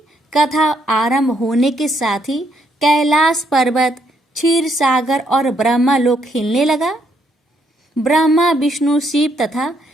कथा आरंभ होने के साथ ही कैलाश पर्वत, क्षीर सागर और ब्रह्मलोक हिलने लगा। ब्रह्मा, विष्णु, शिव तथा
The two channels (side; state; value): both; normal; correlation 0.73